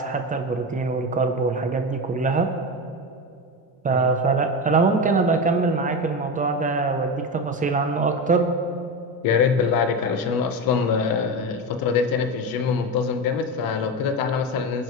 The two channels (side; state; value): both; normal; correlation 0.19